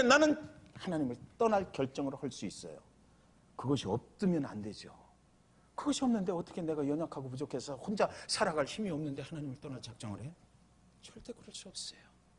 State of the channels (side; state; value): both; identical; correlation 1.00